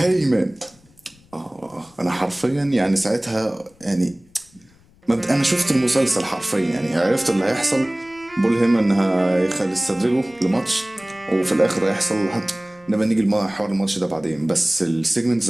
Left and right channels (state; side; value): noise; left; rumble, 30 dB below the sound